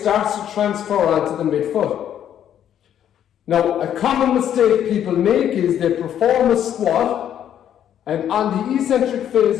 to transfer onto the midfoot. Now, a common mistake people make is they perform a squat, and on the eccentric phase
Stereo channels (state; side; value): quieter; right; 10.1 dB